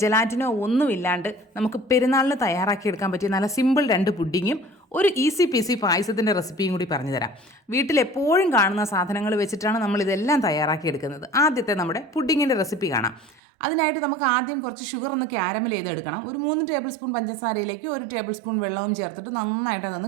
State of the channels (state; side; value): drops out; left; at 13.4 s